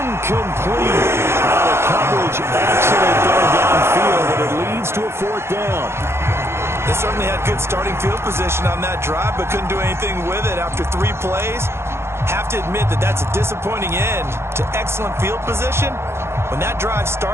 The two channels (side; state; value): left; late; 0.12 ms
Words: The coverage excellent there downfield, and it leads to a 4th down. They certainly had good starting field position on that drive, but couldn't do anything with it after 3 plays. Have to admit that that's a disappointing end to excellent field position. When that drive